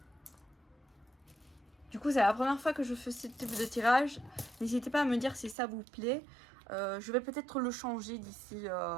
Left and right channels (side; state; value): left; drops out; at 5.6 s